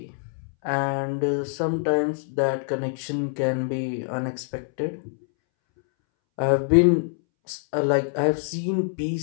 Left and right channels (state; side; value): silent; right; 62 dB below the other